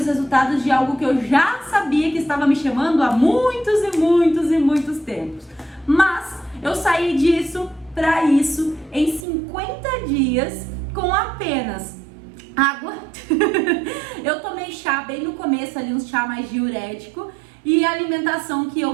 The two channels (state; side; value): drops out; left; at 9.2 s